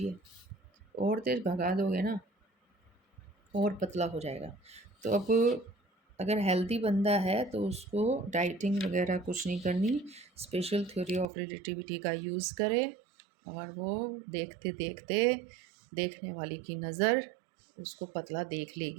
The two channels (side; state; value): left; drops out; at 11.2 s